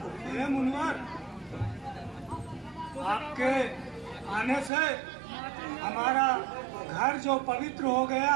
हे मुनिवर, आपके आने से हमारा घर जो पवित्र हो गया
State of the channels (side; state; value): left; drops out; at 4.7 s